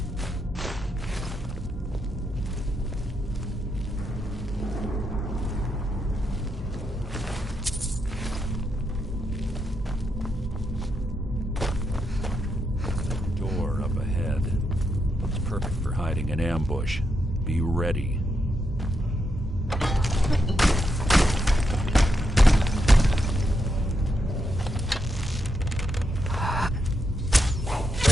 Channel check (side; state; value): both; normal; correlation 0.82